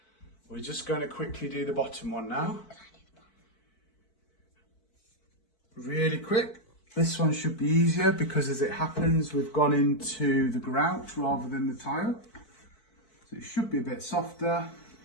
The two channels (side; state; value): right; late; 4.5 ms